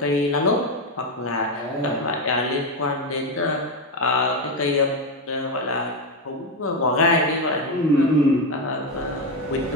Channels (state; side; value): normal; both; correlation 0.10